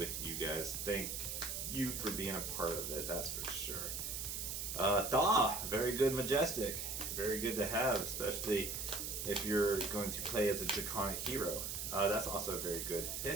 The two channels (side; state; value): right; noise; hiss, 3 dB below the sound